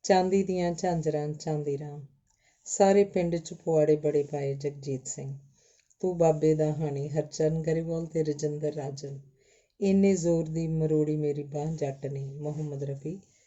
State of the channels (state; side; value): identical; both; correlation 1.00